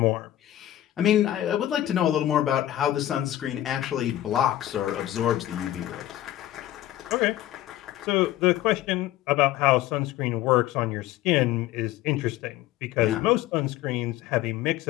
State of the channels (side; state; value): right; quieter; 13.7 dB